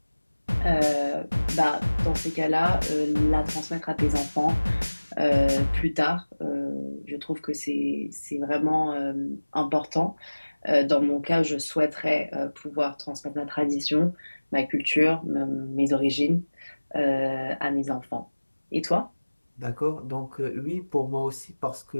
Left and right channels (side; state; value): both; inverted; correlation -1.00